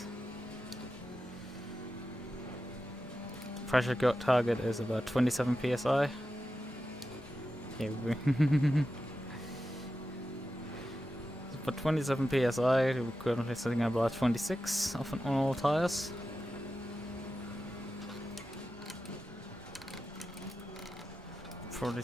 pressure target is about 27 psi. Here we go. But 27 psi, we're currently sitting at about 26 on all tires. Probably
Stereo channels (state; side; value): normal; both; correlation 0.91